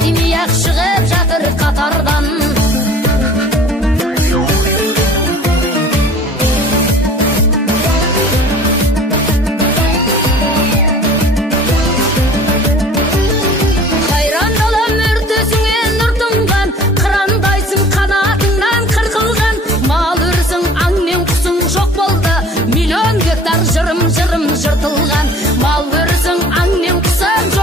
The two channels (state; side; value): normal; both; correlation 0.47